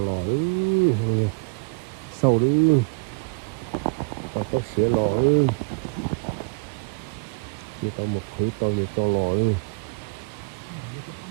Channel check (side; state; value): left; quieter; 31.5 dB